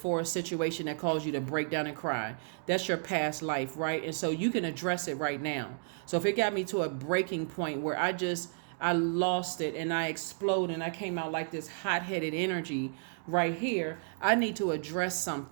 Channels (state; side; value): silent; left; 56 dB below the other